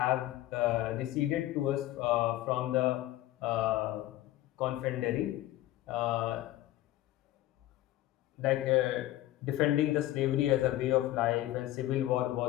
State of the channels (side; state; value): right; quieter; 15.1 dB